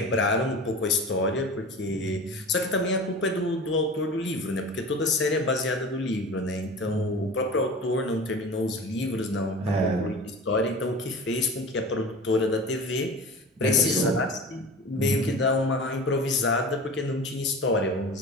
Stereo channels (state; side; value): normal; both; correlation 0.36